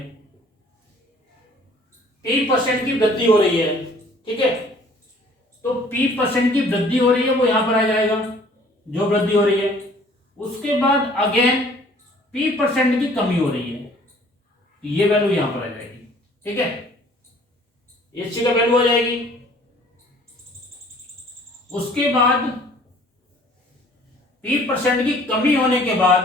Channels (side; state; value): both; normal; correlation 0.55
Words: p% की वृद्धि हो रही है। ठीक है, तो p% की वृद्धि हो रही है, वो यहां पर आ जाएगा जो वृद्धि हो रही है। उसके बाद अगेन p% की कमी हो रही है, ये वैल्यू यहां पर आ जाएगी। ठीक है, इसी का वैल्यू आ जाएगी। उसके बाद p% की कमी होने के